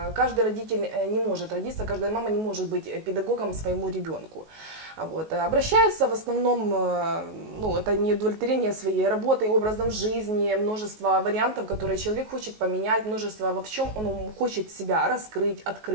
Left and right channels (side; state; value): left; late; 19 ms